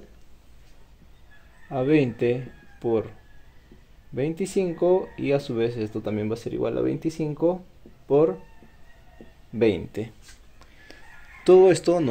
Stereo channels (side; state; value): both; identical; correlation 1.00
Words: a 20 por 25 y a su vez esto también va a ser igual a 25 por 20. Todo esto